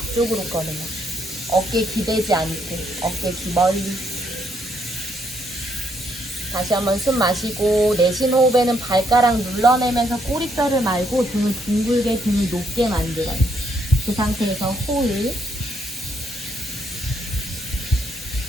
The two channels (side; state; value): both; normal; correlation 0.73